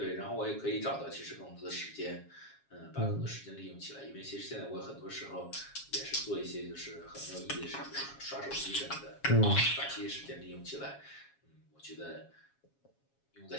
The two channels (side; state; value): right; late; 7.3 ms